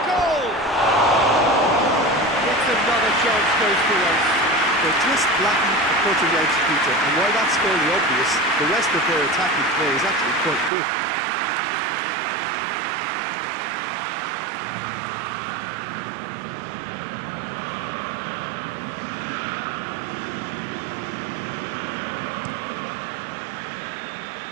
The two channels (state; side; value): drops out; left; at 10.7 s